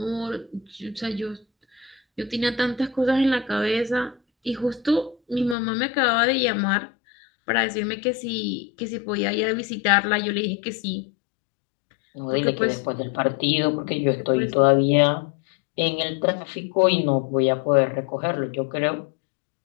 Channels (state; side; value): drops out; right; at 5.6 s